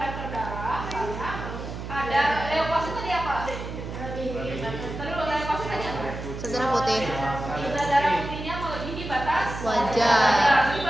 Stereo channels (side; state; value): right; noise; hum, 8 dB below the sound